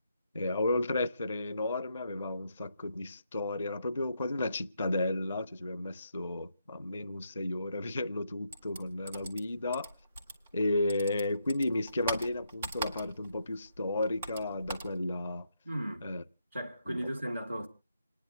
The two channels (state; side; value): inverted; both; correlation -0.79